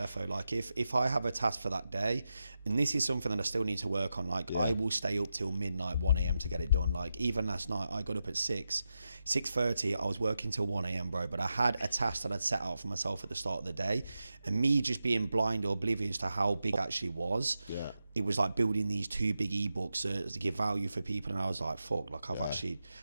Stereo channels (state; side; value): inverted; both; correlation -0.89